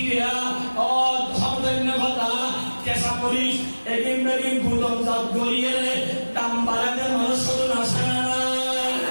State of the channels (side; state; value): both; inverted; correlation -1.00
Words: ও ধর্মভাতা কেঁচা মরিচ এদিন বেদিন গুদামজাত গড়িয়ে দাম বাড়াতে মানুষ শুধু আসে না।